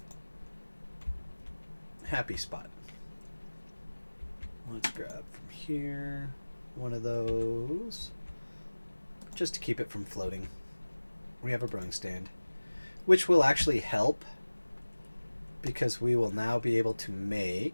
happy spot. Let's grab from here one of those just to keep it from floating. We have a brewing stand, which will actually help because we will now be able to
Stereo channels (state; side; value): inverted; both; correlation -1.00